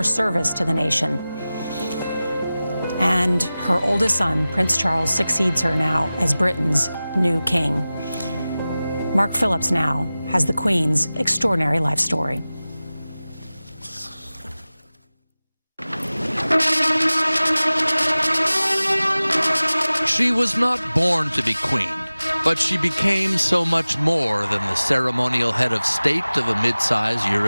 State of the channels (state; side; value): inverted; both; correlation -0.97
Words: service to the nation. And her oldest son, Prince Charles, succeeds her now as Britain's new king. Mark Phillips now has the Queen's extraordinary life story. She was not born to be queen, but she became so much more than the ceremonial head of state of a mid-sized